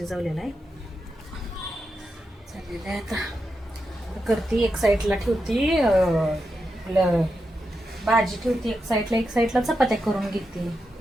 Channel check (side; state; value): both; normal; correlation 0.87